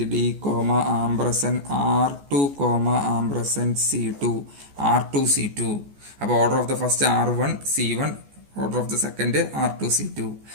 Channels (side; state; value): left; late; 14 ms